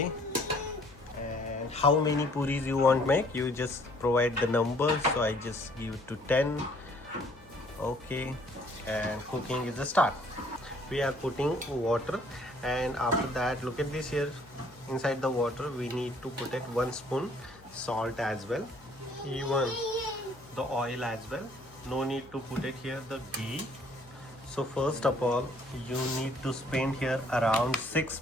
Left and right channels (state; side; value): noise; left; hum, 24 dB below the sound